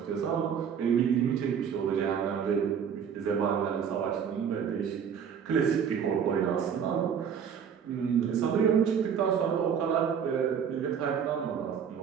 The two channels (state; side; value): quieter; left; 7.6 dB